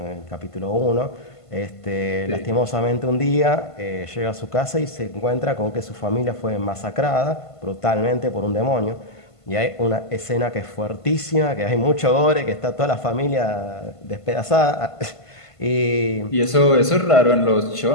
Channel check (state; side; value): late; right; 1.5 ms